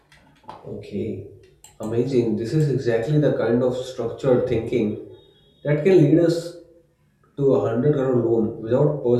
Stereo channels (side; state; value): both; identical; correlation 1.00